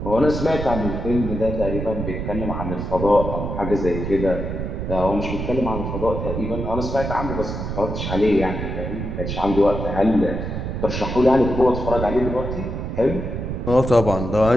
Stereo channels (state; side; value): noise; right; rumble, 4 dB below the sound